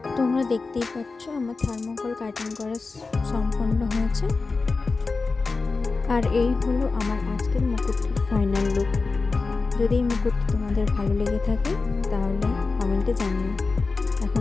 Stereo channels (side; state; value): right; quieter; 4.1 dB